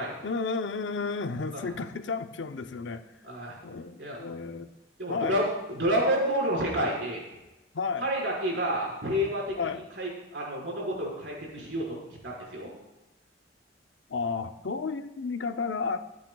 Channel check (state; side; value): normal; both; correlation -0.07